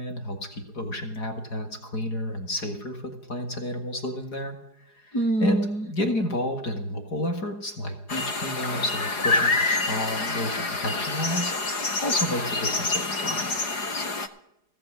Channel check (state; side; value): late; right; 4.8 ms